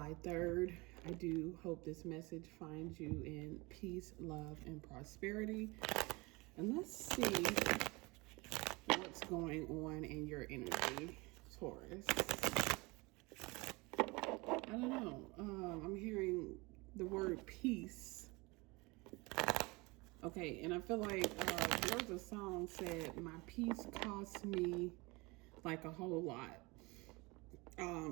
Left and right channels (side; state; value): left; quieter; 25.0 dB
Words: 3rd. I do hope this message finds you in peace, love, and prosperity. And let's see what's going on in your energy, Taurus. I don't know. I'm hearing the word peace. Okay, and I feel like there was a song said, my peace cost me like a whole lot.